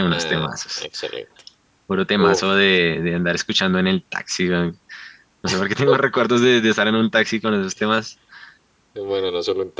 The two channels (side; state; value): both; identical; correlation 1.00